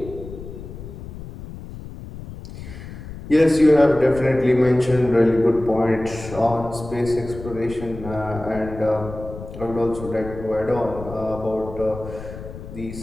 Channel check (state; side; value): noise; left; rumble, 12 dB below the sound